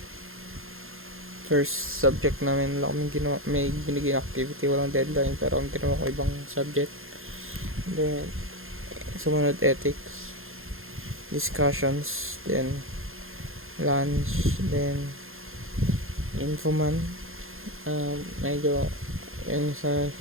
first subject namin lang kami ginawa, may binigay activity, walang deadline, pero ang ginawa ko ibang subject. Then, sumunod ethics, discussions, then lunch, then infoman. Medyo yun sa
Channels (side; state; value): left; late; 0.60 ms